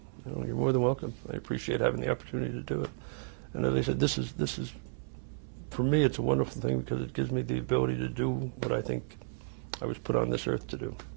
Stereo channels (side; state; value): left; silent; 56 dB below the other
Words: You're more than welcome. I appreciate having the opportunity to do it. And as I said, this is for me, it's a wonderful thing because it gives me the ability to do what I think I was put on this earth to do.